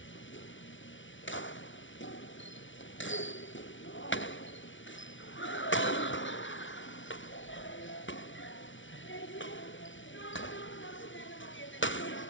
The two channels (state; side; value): late; right; 0.56 ms